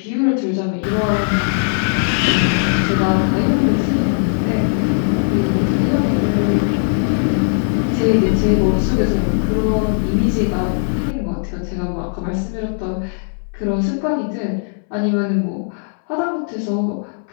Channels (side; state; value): right; silent; 64 dB below the other